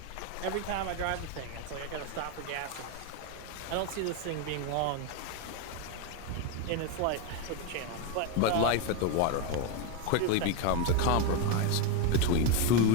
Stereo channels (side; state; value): both; different; correlation 0.02